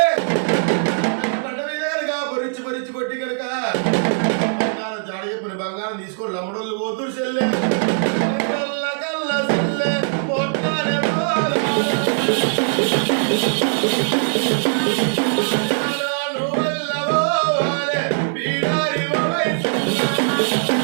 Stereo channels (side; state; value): left; silent; 65 dB below the other